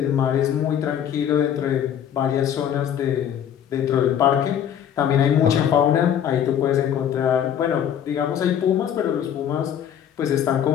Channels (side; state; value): right; quieter; 9.3 dB